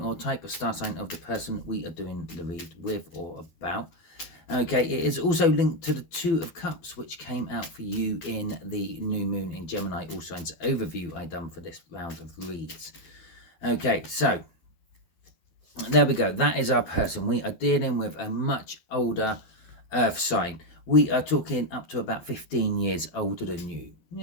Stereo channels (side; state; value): right; late; 12 ms